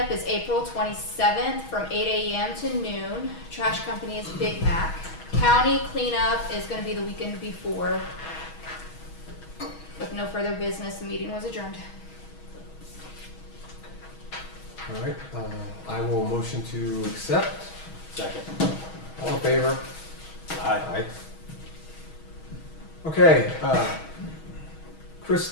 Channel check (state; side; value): late; right; 6.3 ms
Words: is April 27th from 8 a.m. to noon. Trash company is Big Mac. County cleanup is going to be the weekend before. With no further business, the meeting was adjourned. All right, I will motion to accept. Second. All in favor? Aye. Aye. Okay,